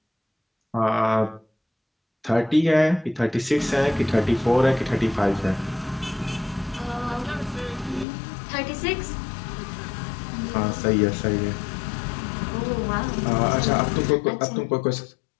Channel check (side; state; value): right; drops out; at 8.1 s